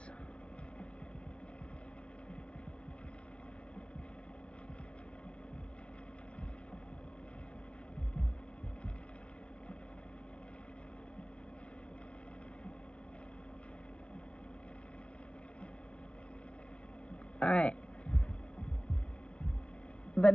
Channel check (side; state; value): right; late; 0.059 ms